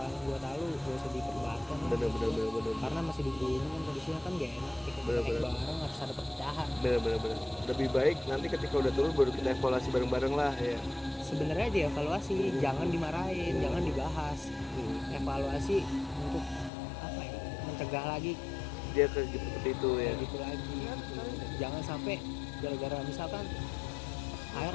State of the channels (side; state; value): right; drops out; at 16.7 s